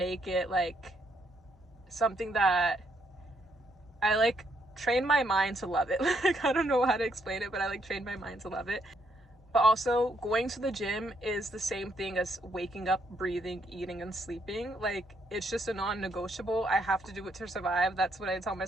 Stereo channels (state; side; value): normal; both; correlation 0.74